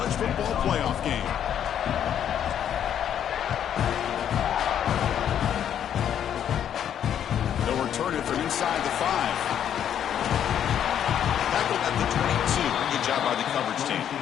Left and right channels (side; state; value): right; quieter; 9.5 dB